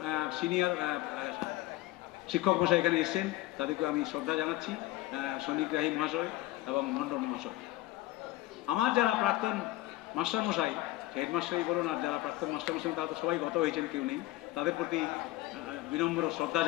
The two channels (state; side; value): quieter; right; 17.5 dB